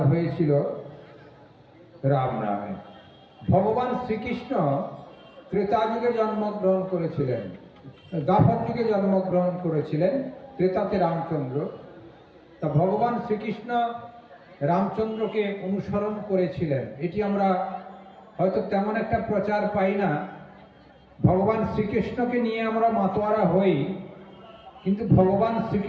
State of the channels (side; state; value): both; identical; correlation 1.00